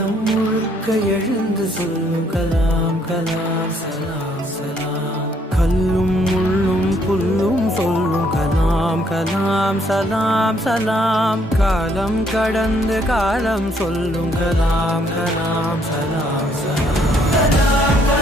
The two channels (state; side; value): normal; both; correlation 0.68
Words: முழுக்க எழுந்து சொல்லும் கலாம் கலாம் சலாம் சலாம். கல்லும் முள்ளும் புல்லும் சொல்லும் கலாம் கலாம் சலாம் சலாம். காலம் கடந்து காலம் சொல்லும் கலாம் கலாம் சலாம் சலாம். கலாம்